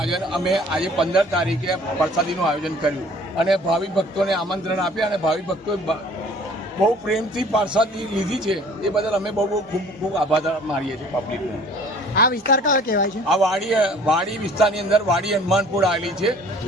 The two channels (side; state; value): both; normal; correlation 0.52